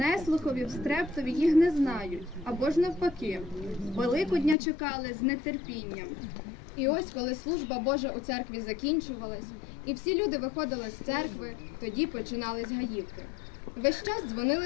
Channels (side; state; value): right; drops out; at 4.5 s